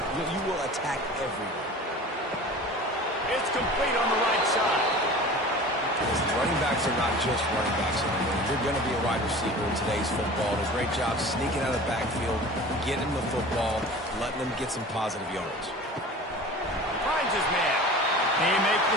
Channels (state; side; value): normal; both; correlation 0.39